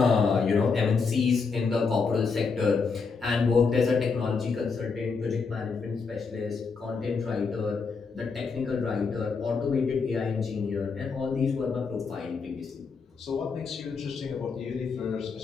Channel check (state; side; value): quieter; right; 5.0 dB